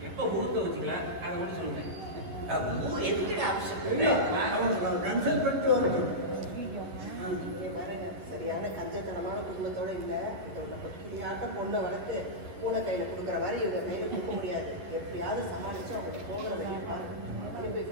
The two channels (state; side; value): late; left; 11 ms